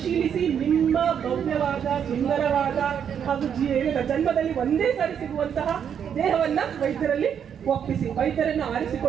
ನಿಮ್ಮ ಭವ್ಯವಾದ, ಸುಂದರವಾದ ಹಾಗೂ ಜನ್ಮದಲ್ಲಿ ಒಂದೇ ಸಾರಿ ಸಿಗುವಂತಹ ದೇಹವನ್ನ ವೈದ್ಯರಲ್ಲಿ ಒಪ್ಪಿಸಿ ವೈದ್ಯರನ್ನು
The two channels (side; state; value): left; quieter; 8.2 dB